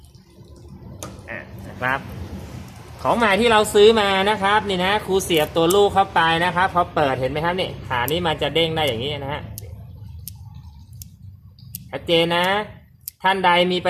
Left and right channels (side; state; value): both; identical; correlation 1.00